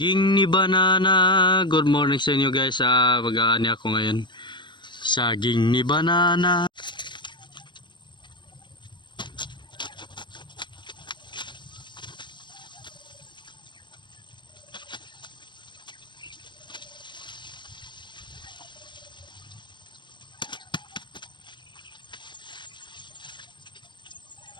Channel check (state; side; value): late; right; 0.22 ms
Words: ni banana. Good morning sa inyo guys. Mag-aani ako ngayon. Saging ni banana.